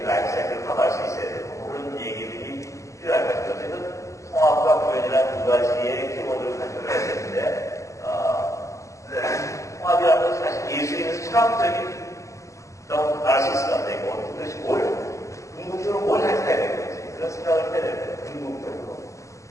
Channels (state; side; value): late; right; 0.15 ms